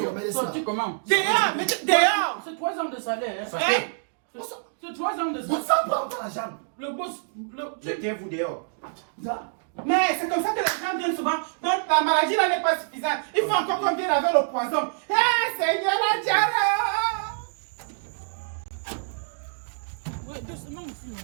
le remède, ça. Sorti comment? dehors, mais dehors. C'est 3 ans de salaire. Hein? Sortez. C'est 3 ans de Vous salaire. savez pas encore la jambe. Le boss, Mettez-vous dehors. Mais c'est comme ça que les gens viennent souvent. Donc la maladie là n'est pas suffisante. Il faut encore qu'on vienne avec le poison. Eh Seigneur, la diarrhée! ouais, doucement aussi.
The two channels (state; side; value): silent; left; digital silence